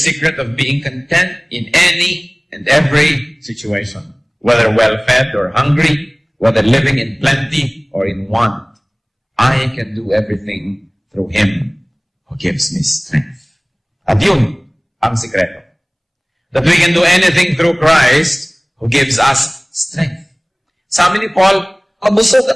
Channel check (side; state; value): both; identical; correlation 1.00